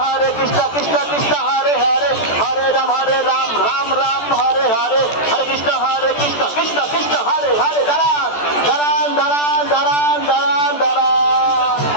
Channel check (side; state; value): right; late; 14 ms